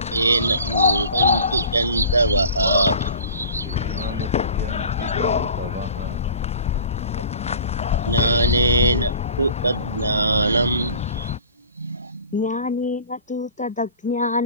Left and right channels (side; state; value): both; inverted; correlation -0.43